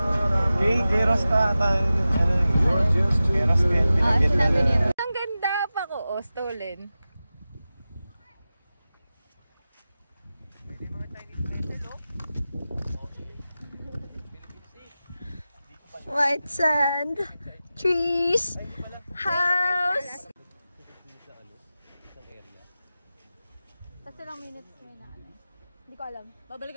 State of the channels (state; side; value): inverted; both; correlation -0.94